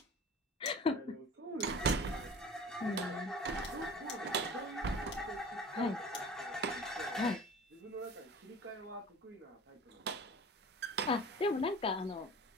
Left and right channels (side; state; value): both; normal; correlation 0.41